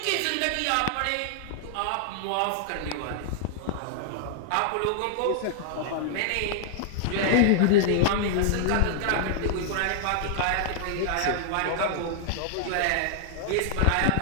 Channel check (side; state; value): both; different; correlation -0.01